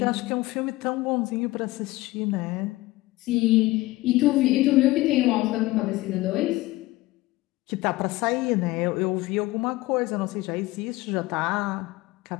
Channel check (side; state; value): right; quieter; 19.0 dB